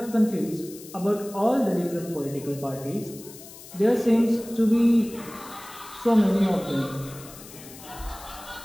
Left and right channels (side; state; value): left; noise; hiss, 17 dB below the sound